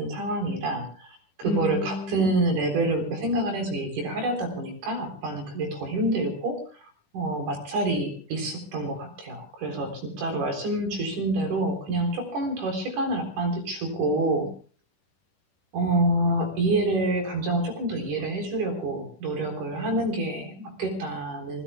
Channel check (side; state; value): left; late; 10 ms